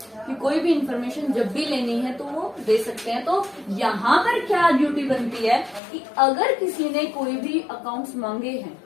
कि कोई भी इंफॉर्मेशन जब भी लेनी है तो वो दे सकते हैं। तो यहाँ पर क्या ड्यूटी बनती है कि अगर किसी ने कोई भी अकाउंट्स मांगे हैं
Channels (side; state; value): right; drops out; at 5.8 s